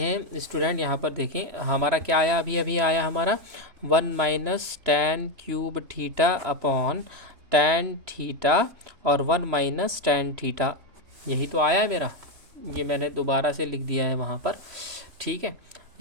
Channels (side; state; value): left; late; 3.0 ms